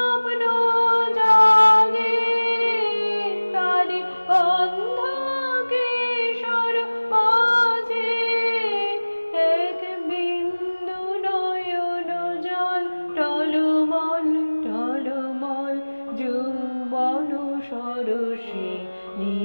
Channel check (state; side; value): inverted; both; correlation -1.00